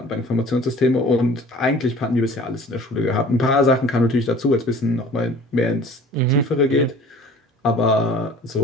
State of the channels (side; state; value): both; normal; correlation 0.47